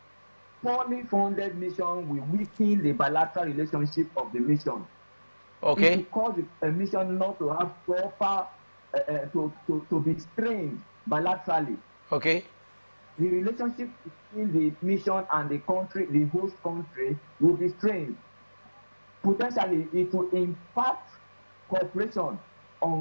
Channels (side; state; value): both; inverted; correlation -1.00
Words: poorly funded mission will weaken the bilateral relationship of the mission. Okay. It will cause a mission not to have proper to be strained bilaterally. Okay. The relationship between the mission and the country, the host country, will be strained. Potentially, it will impact cooperation